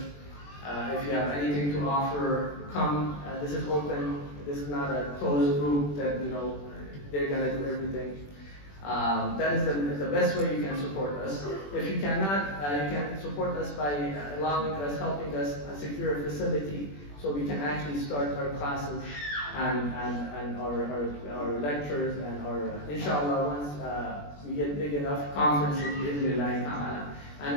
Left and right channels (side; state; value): right; late; 21 ms